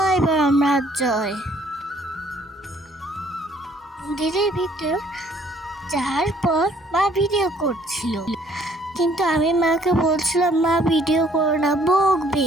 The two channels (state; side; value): normal; both; correlation 0.62